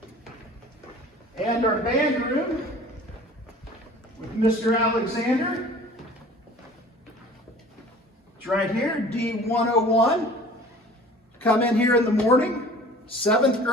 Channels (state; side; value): normal; both; correlation 0.46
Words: And our band room with Mr. Alexander. It's right here, D101. Come in here in the morning. 7th